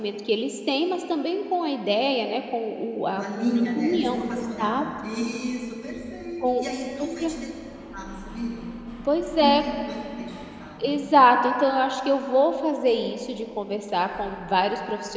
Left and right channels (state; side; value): identical; both; correlation 1.00